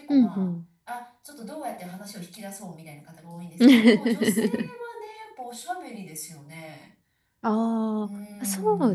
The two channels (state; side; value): identical; both; correlation 1.00